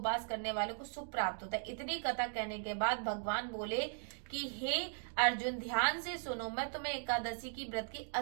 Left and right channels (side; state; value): left; silent; digital silence